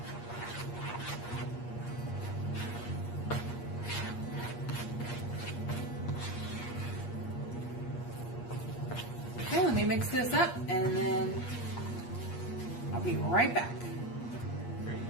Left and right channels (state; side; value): late; right; 8.5 ms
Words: Okay, let me mix this up and then I'll be right back.